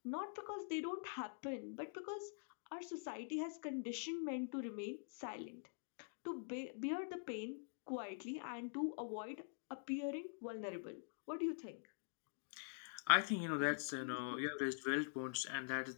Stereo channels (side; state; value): right; silent; digital silence